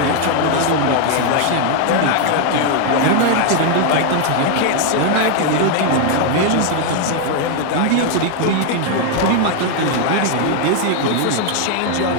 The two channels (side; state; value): both; different; correlation 0.01